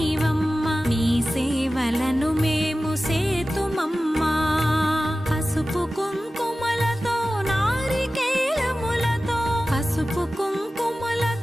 నీ సేవలను మేము సేతుమమ్మా. పసుపు కుంకుమలతో నారికేలములతో, పసుపు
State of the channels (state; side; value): normal; both; correlation 0.96